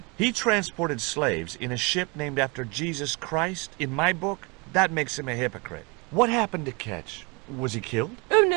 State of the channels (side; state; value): left; quieter; 29.5 dB